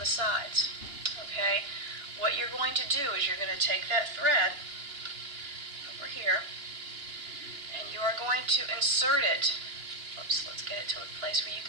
sides. Okay? What you're going to do is you're going to take that thread over here, and you are going to insert it. Oops, let's get it to a place where you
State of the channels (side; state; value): left; late; 2.9 ms